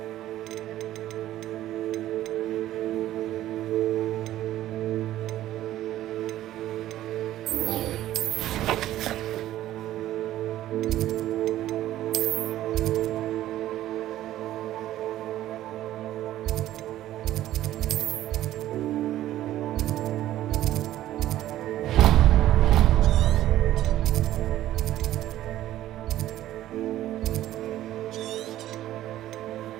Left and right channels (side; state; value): left; quieter; 13.7 dB